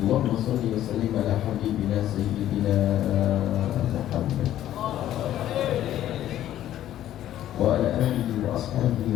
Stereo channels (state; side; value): quieter; right; 12.4 dB